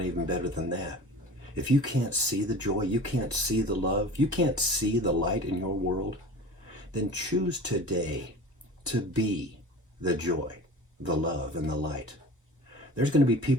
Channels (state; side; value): normal; both; correlation 0.38